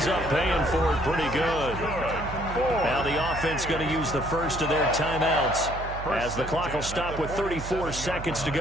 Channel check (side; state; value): right; noise; hum, 9 dB below the sound